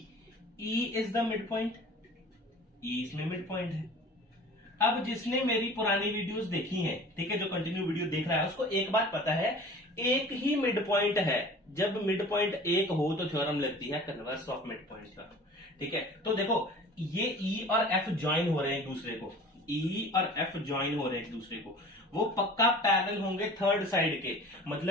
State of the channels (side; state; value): both; normal; correlation 0.43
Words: E is the mid point. E इसमें मिड पॉइंट है। अब जिसने मेरी पुरानी वीडियोस देखी हैं, ठीक है, जो कंटिन्यू वीडियो देख रहा है उसको एक बात पता है, एक ही मिड पॉइंट है। जब मिड पॉइंट एक हो तो थ्योरम लगती है converse of mid point theorem, ठीक है। तो देखो ये ई और एफ ज्वाइन हो रहे हैं एक दूसरे को, ई और एफ ज्वाइन हो रहे हैं एक दूसरे को, वो पक्का पैरेलल होंगे थर्ड साइड के,